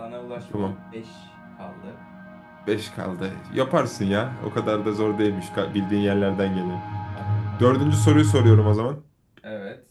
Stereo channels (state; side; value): identical; both; correlation 1.00